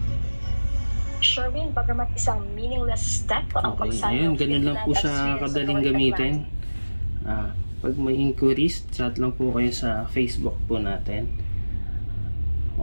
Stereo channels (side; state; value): both; inverted; correlation -1.00